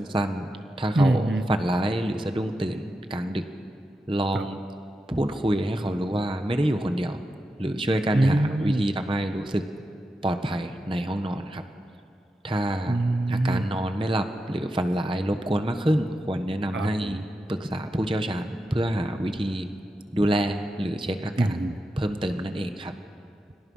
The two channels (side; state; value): both; normal; correlation 0.88